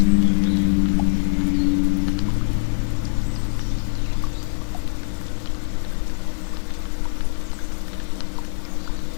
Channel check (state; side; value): silent; right; 61 dB below the other